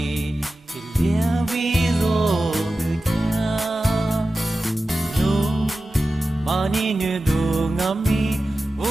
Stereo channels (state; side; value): normal; both; correlation 0.94